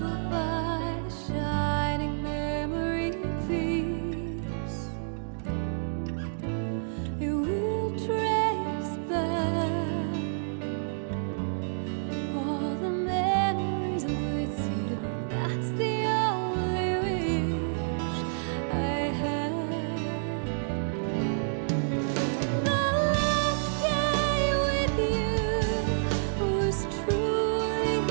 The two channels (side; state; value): left; silent; digital silence